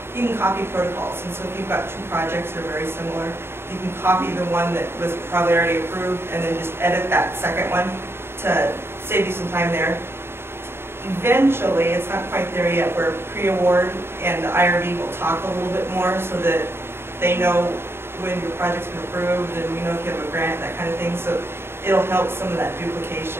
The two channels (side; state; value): left; late; 0.11 ms